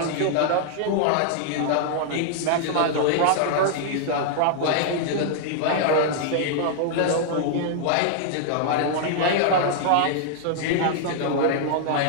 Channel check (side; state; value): both; different; correlation -0.01